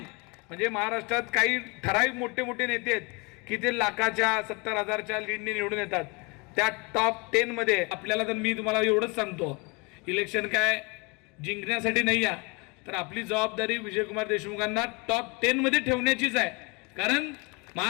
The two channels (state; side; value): quieter; right; 28.6 dB